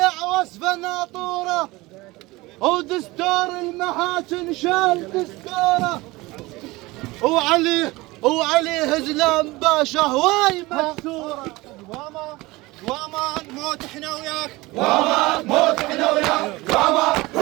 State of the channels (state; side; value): quieter; left; 21.1 dB